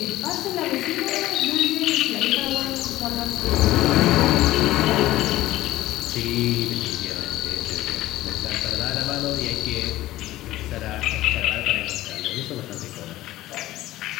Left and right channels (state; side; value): quieter; right; 15.9 dB